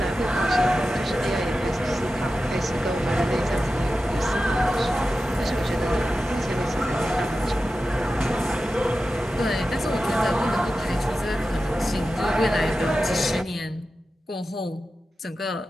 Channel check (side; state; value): both; normal; correlation 0.93